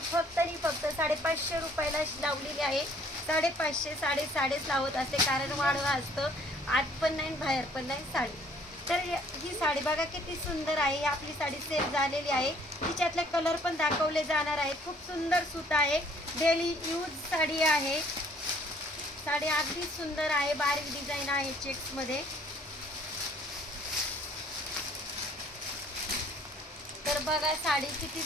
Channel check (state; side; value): normal; both; correlation 0.59